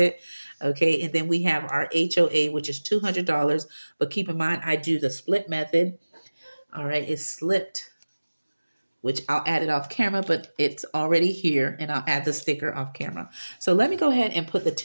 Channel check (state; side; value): inverted; both; correlation -1.00